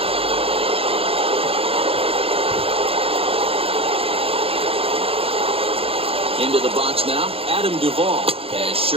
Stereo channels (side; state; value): left; late; 0.27 ms